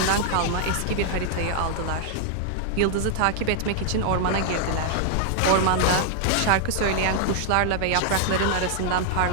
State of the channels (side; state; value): both; different; correlation 0.00